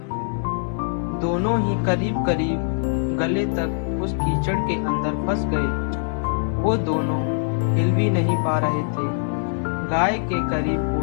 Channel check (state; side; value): silent; right; digital silence